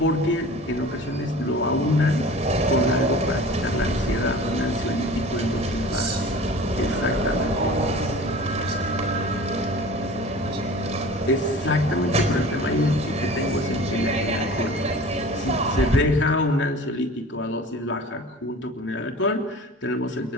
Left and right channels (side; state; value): both; normal; correlation 0.41